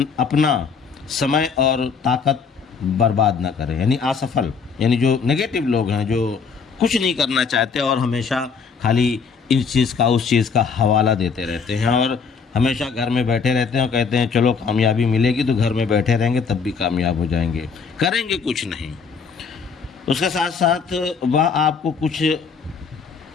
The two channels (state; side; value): quieter; right; 5.6 dB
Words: अपना समय और ताकत बर्बाद ना करें। यानी असफल, यानी जो नेगेटिव लोग हैं, जो कुछ नहीं करना चाहते और हमेशा खाली इस चीज़ का उस चीज़ का हवाला देते रहते हैं और हमेशा घर में बैठे रहते हैं और कहते हैं चलो कामयाबी मिलेगी तो घर में बैठे रहेंगे तब भी कामयाब हो जाएंगे, करेंगे कुछ नहीं। उसके साथ साथ वह आपको कुछ